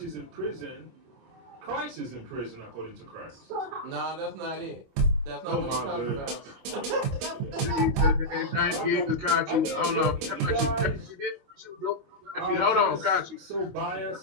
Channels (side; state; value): left; late; 24 ms